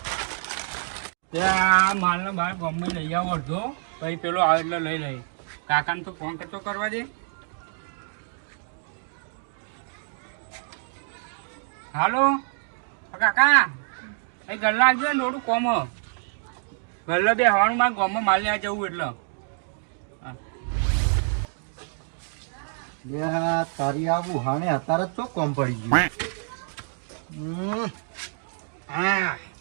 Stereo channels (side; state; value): left; silent; 61 dB below the other